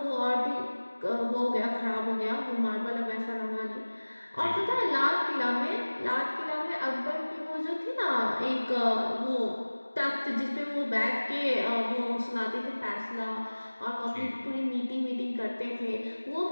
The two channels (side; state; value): both; inverted; correlation -1.00